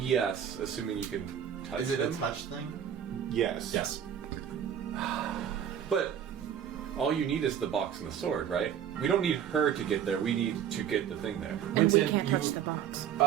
assuming you can touch Is it them. a touch thing? Yes. Yes. But all you need is the box and the sword, right? We don't need her to get there. We need to get the thing there. And we Winston, can't you- touch the box.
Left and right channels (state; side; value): quieter; left; 9.2 dB